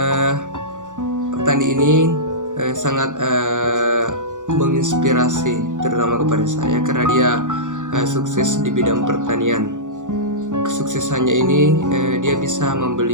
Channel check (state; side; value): late; left; 0.86 ms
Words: Petani ini sangat menginspirasi, terutama kepada saya, karena dia sukses di bidang pertanian. Kesuksesannya ini dia bisa membeli